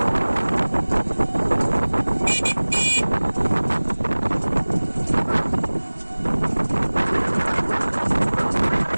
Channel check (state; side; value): inverted; both; correlation -1.00